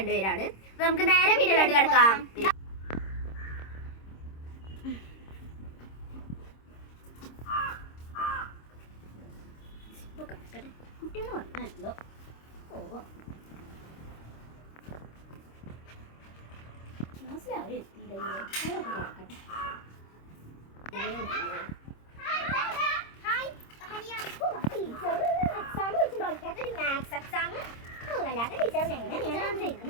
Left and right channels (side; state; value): right; late; 26 ms